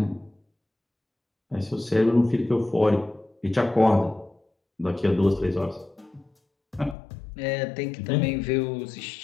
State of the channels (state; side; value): drops out; right; at 7.0 s